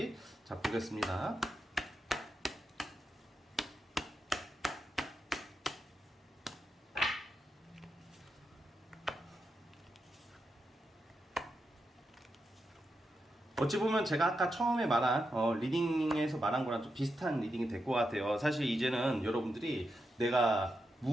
자 보겠습니다. 어찌 보면 제가 아까 처음에 말한 리딩에서 말한 거랑 좀 비슷한 리딩이 될 것 같아요. 사실 이제는 여러분들이 내가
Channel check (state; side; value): normal; both; correlation 0.86